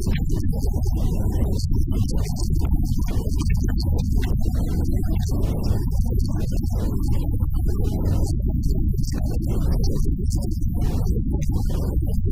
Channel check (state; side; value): identical; both; correlation 1.00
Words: défendé woon nañu kër di leen laaj ndax ñi ngi soxla kër yooyu ba léegi ku ca wax ne léegi soxla na kër googu ba léegi ñu fexe nuñ ko jëlee yóbbu ko ci kër googu ñi nga xam ne nag soxlaatuñ kër ñu xool lañ soxla ñu enregistré ko xool ña